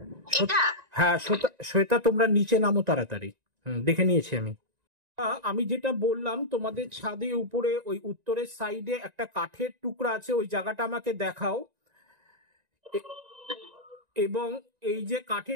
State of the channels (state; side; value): late; left; 1.9 ms